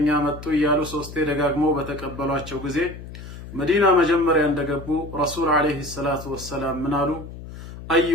መጡ እያሉ ሶስቴ ደጋግመው በተቀበሏቸው ጊዜ መዲና መጀመሪያ እንደገቡ ረሱል አለይሂ ሰላቱ ወሰላም ምን አሉ?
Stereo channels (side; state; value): left; noise; hum, 13 dB below the sound